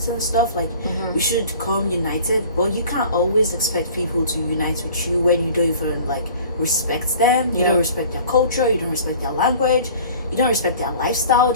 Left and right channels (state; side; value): inverted; both; correlation -0.47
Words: and stuff. Like we should come united, but you can't always expect people to unite with you when you don't even like respect them. You don't respect their culture, you don't respect their language, you don't respect their lifestyle,